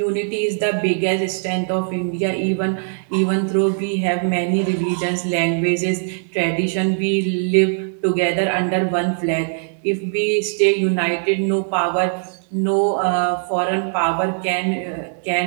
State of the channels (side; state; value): left; silent; digital silence